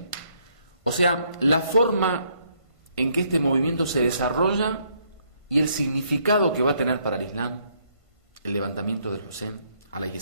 O sea, la forma en que este movimiento se desarrolla y el significado que va a tener para el Islam el levantamiento del Hussein alayhi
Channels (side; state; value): left; late; 1.5 ms